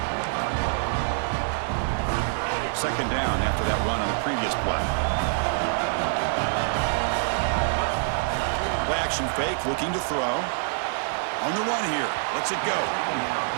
Second down after that run on the previous play. Play action fake, looking to throw. On the run here, lets it go.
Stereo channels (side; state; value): left; silent; 61 dB below the other